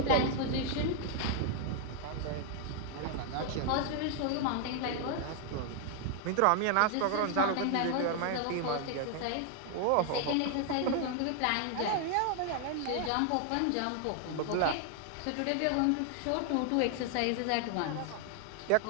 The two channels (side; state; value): both; different; correlation 0.00